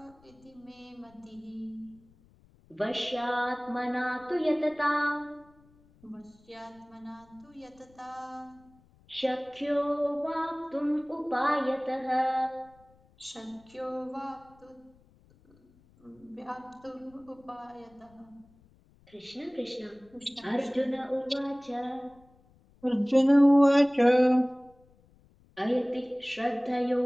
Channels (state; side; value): noise; left; rumble, 29 dB below the sound